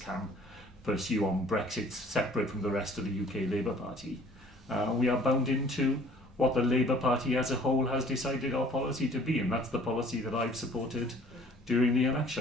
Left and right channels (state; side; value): normal; both; correlation 0.54